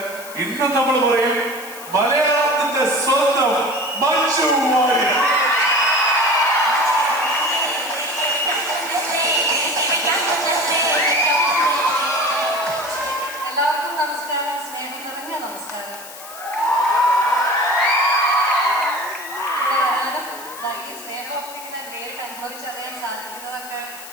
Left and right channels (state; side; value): noise; left; hiss, 15 dB below the sound